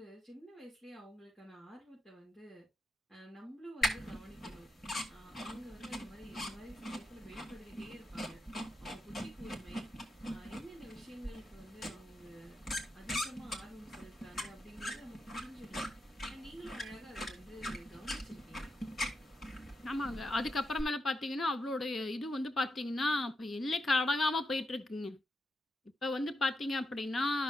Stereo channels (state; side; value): normal; both; correlation 0.85